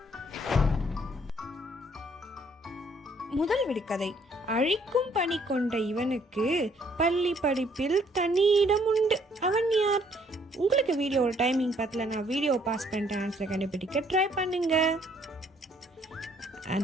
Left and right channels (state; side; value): normal; both; correlation 0.64